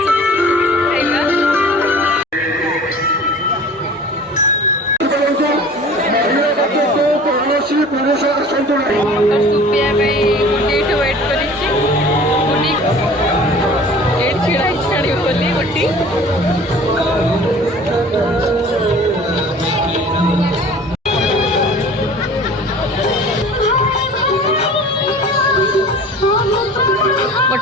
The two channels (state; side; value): normal; both; correlation 0.44